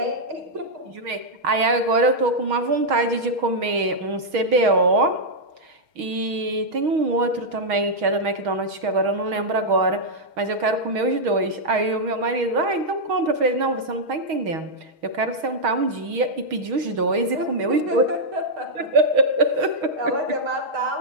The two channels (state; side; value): late; left; 6.4 ms